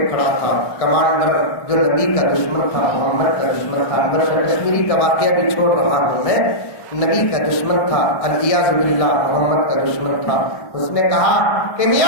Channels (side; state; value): right; late; 1.6 ms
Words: کھڑا تھا. کمانڈر جو نبی کا دشمن تھا، محمد کا دشمن تھا. انور کشمیری کا واقعہ بھی چھوڑ رہا ہوں میں. نبی کا دشمن تھا، الیاذ باللہ محمد کا دشمن تھا. اس نے کہا کہ